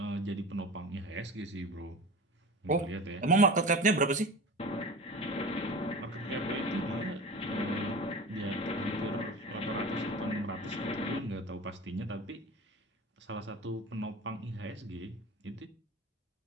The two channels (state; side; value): normal; both; correlation 0.33